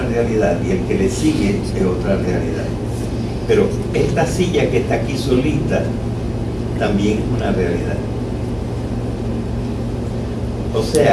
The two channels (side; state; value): both; identical; correlation 1.00